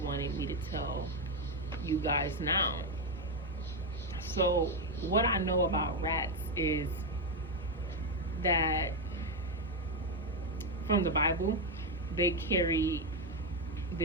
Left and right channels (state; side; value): normal; both; correlation 0.05